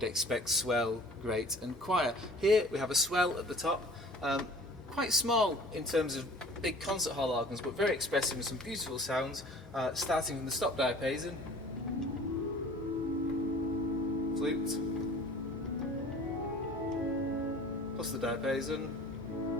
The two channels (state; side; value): normal; both; correlation 0.47